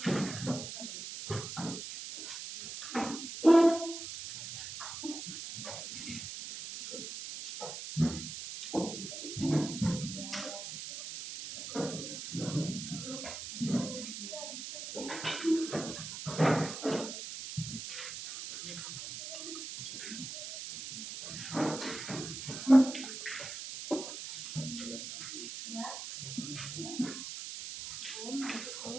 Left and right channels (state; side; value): noise; right; hiss, 8 dB below the sound